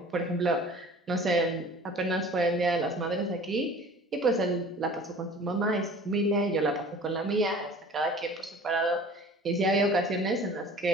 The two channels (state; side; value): normal; both; correlation 0.45